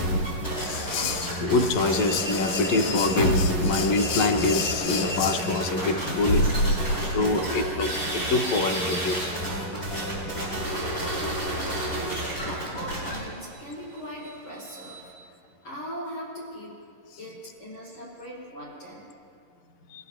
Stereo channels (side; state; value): right; late; 11 ms